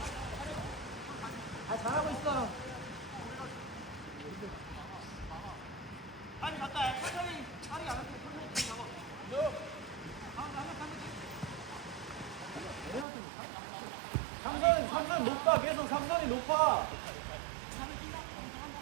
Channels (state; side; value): drops out; left; at 13.1 s